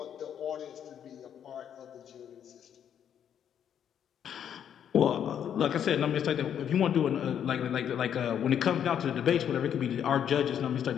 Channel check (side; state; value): right; quieter; 9.1 dB